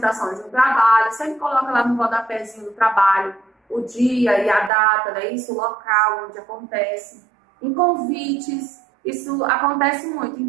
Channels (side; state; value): left; drops out; at 4.7 s